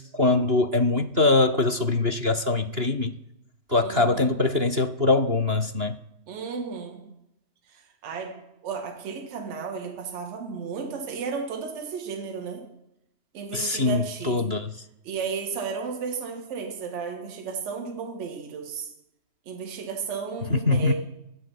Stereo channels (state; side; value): late; left; 2.9 ms